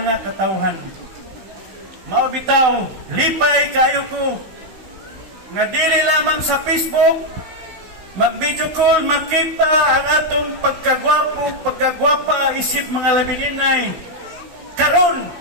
katawhan. Maubitaw, lipay kayo ko nga dili lamang sa Facebook mag-video call, makita ang atong pagkagwapa isip mga labininay. Karon,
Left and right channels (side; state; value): left; late; 16 ms